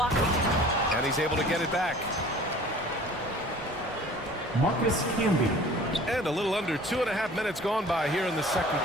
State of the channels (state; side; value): normal; both; correlation 0.47